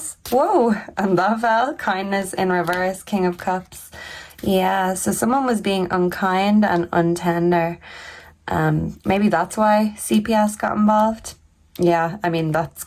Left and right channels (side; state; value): both; identical; correlation 1.00